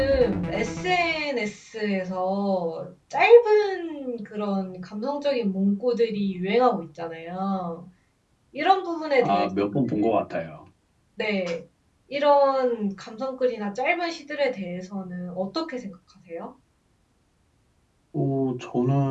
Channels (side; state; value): both; identical; correlation 1.00